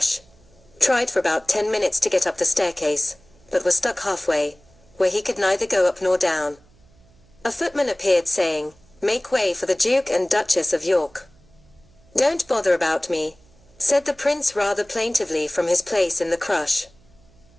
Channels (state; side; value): noise; right; hum, 29 dB below the sound